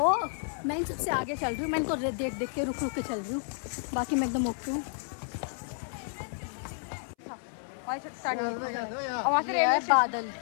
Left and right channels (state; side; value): silent; right; 57 dB below the other